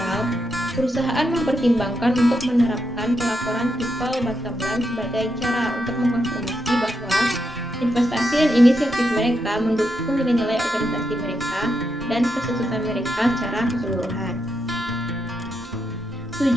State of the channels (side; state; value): both; normal; correlation 0.83